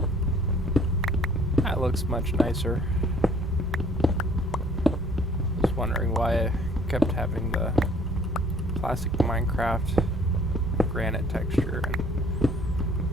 That looks much nicer. I was wondering why I kept having the classic Minecraft granite texture, and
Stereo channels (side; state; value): both; normal; correlation 0.57